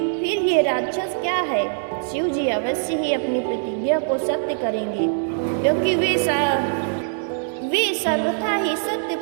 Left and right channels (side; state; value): left; silent; digital silence